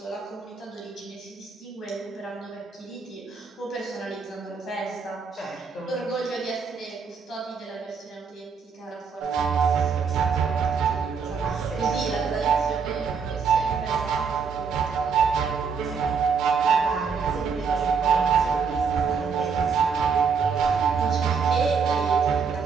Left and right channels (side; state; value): left; quieter; 5.8 dB